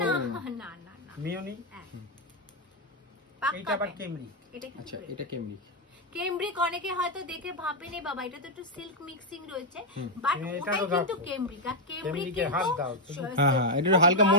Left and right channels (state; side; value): normal; both; correlation 0.01